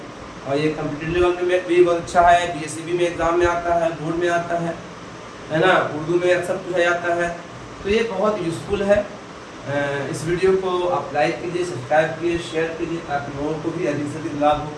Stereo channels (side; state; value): both; identical; correlation 1.00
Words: और ये कंप्यूटर लेवल में भी बहुत अच्छा है, बीएससीबी में एग्जाम में आता है, बोर्ड में आता है ना, उर्दू में अक्सर पूछा जाता है। तो ये बहुत यूज़फुल है। इस वीडियो को आप लाइक कीजिए, सब्सक्राइब कीजिए, शेयर कीजिए, ताकि लोगों को भी अधिक से अधिक लाभ हो।